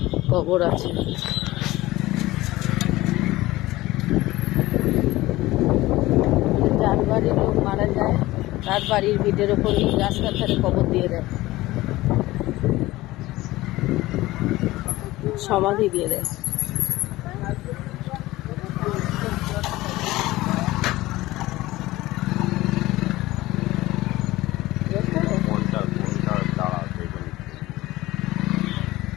কবর আছে। যার বাড়ির লোক মারা যায় তার বাড়ির ভিটের ওপরই রাস্তার ধারে কবর দিয়ে দেয়, সমাধি দিয়ে দেয়।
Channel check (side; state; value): right; quieter; 18.1 dB